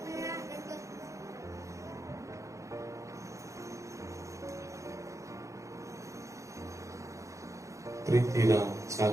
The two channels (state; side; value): late; left; 0.15 ms